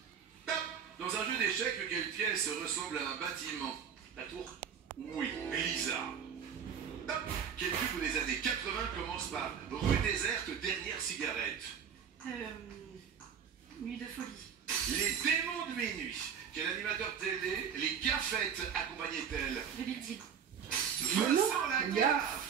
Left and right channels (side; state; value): left; quieter; 7.6 dB